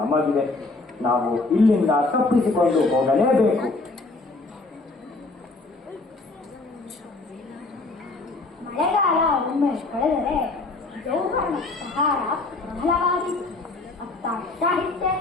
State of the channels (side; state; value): right; quieter; 3.3 dB